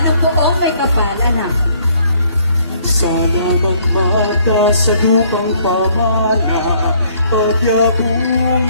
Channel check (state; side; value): inverted; both; correlation -0.63